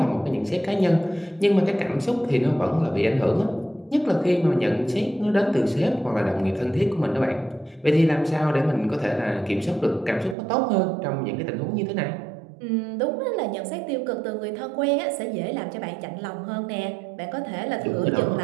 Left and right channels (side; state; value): left; drops out; at 10.4 s